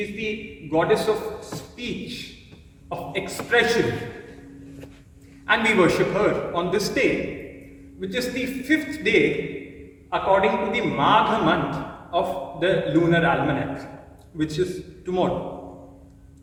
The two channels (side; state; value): both; identical; correlation 1.00